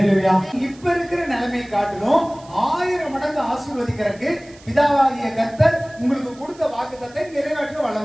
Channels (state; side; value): noise; right; hiss, 25 dB below the sound